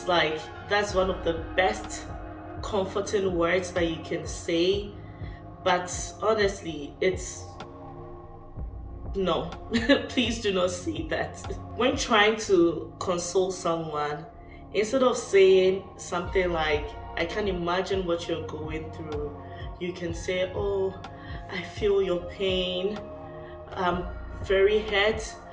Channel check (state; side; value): identical; both; correlation 1.00